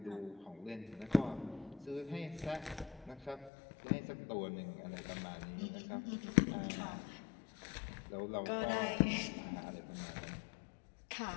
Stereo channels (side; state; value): right; drops out; at 3.5 s